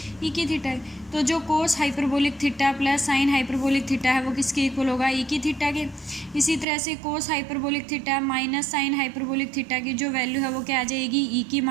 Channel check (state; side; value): drops out; left; at 6.7 s